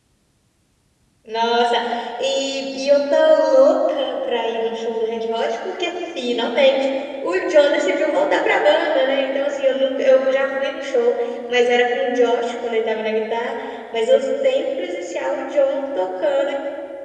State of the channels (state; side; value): identical; both; correlation 1.00